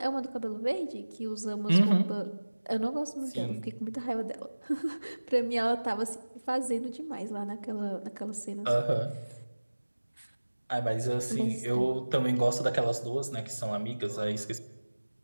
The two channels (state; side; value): inverted; both; correlation -1.00